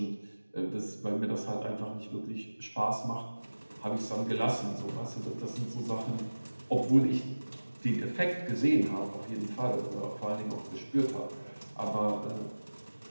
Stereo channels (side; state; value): both; inverted; correlation -1.00